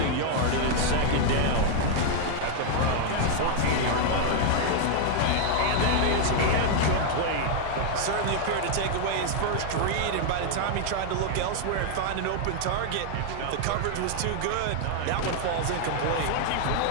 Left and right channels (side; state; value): both; different; correlation 0.00